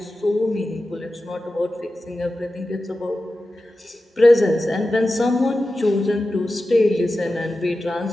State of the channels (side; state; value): both; normal; correlation 0.93